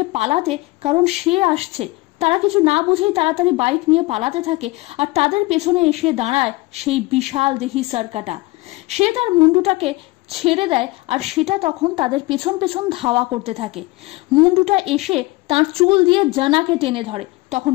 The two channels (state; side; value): quieter; right; 21.3 dB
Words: পালাতে, কারণ সে আসছে। তারা কিছু না বুঝেই তাড়াতাড়ি বাইক নিয়ে পালাতে থাকে, আর তাদের পেছনে এসে দাঁড়ায় সেই বিশাল দেহি সরকাটা। সে তার মুন্ডুটাকে ছেড়ে দেয় আর সেটা তখন তাদের পেছন পেছন ধাওয়া করতে থাকে। মুন্ডুটা এসে তার চুল দিয়ে জানাকে টেনে ধরে। তখন